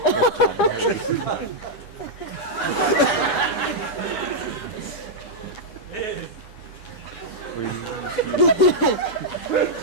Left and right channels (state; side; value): late; right; 9.4 ms